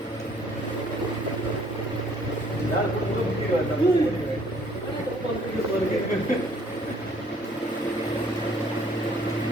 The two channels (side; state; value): both; normal; correlation 0.61